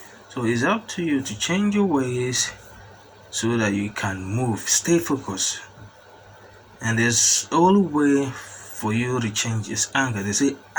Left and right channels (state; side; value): identical; both; correlation 1.00